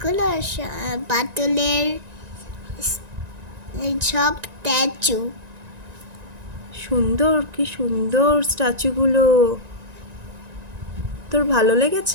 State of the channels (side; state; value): left; late; 1.9 ms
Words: পাটুলের সব স্ট্যাচু। সুন্দর, কি সুন্দর স্ট্যাচুগুলো। তোর ভালো